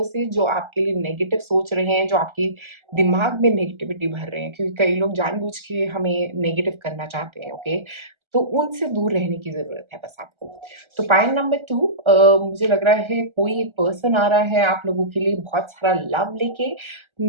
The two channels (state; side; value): late; left; 1.3 ms